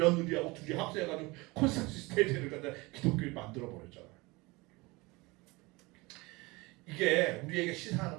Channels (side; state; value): left; quieter; 23.8 dB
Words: 둘이 합세해가지고 콘스탄티누스 세대를 갖다 기독교인 만들어버렸잖아요. 이게 우리에게